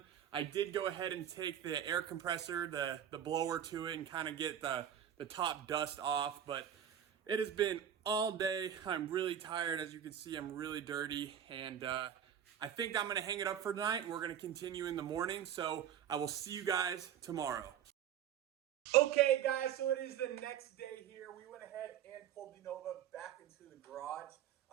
I did go ahead and take the air compressor, the blower to it, and kind of get the top dust off, but it has been all day. I'm really tired. As you can see, I'm really dirty, and I think I'm gonna hang it up for tonight, and we're gonna continue in the morning. So I will see you guys tomorrow. Okay, guys, so it is the next day here. We went ahead and pulled the Nova back into the garage.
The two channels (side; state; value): left; quieter; 9.6 dB